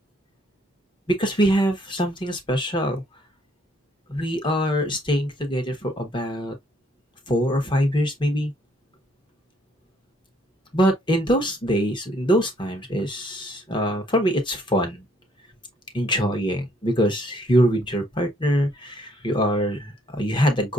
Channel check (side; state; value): both; normal; correlation 0.66